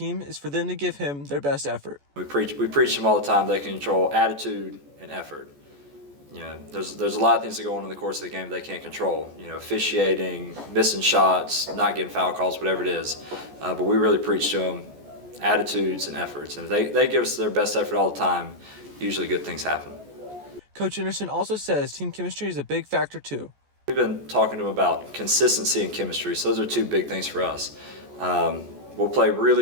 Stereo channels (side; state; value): left; late; 14 ms